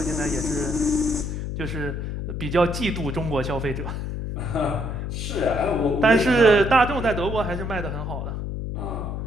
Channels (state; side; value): noise; left; hum, 4 dB below the sound